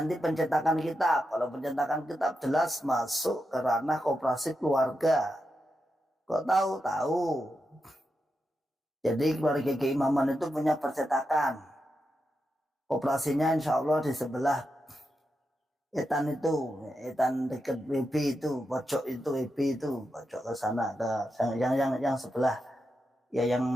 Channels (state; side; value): normal; both; correlation 0.87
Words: pencetakan kitab. Kalau pencetakan kitab jelas masuk ke ranah koperasi keluarga. Kok tahu? Jadi keluarga keimaman itu punya percetakan. Operasinya insya Allah di sebelah etan dekat WB itu, pojok itu WB itu, pojok ke sana ke yang sebelah ya yang